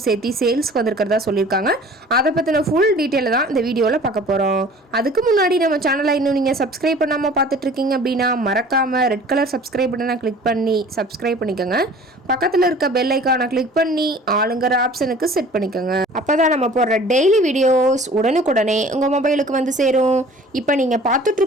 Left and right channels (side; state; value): both; normal; correlation 0.47